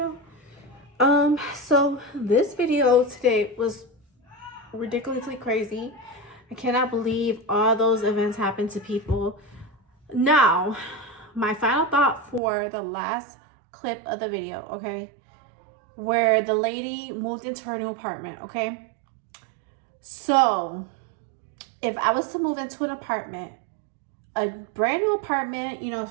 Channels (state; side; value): drops out; left; at 12.4 s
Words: So this video today was ridiculously crazy. I cannot believe all those events happened to people. Now, my final thought for the last clip of the video, okay? Where the lady moved into her new apartment, okay? So, if I was to move into an apartment, a brand new apartment, you know,